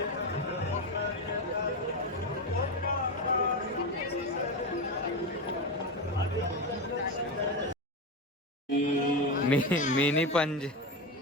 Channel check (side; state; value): both; normal; correlation 0.16